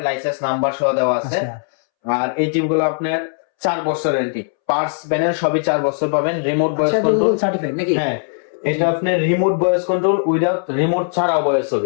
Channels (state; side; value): silent; right; 67 dB below the other